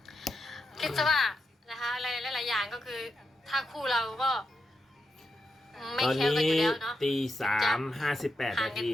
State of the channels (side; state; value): both; normal; correlation 0.85